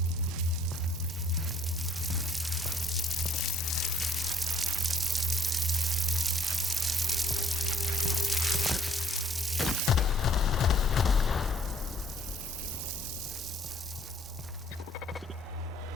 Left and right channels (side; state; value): both; normal; correlation 0.61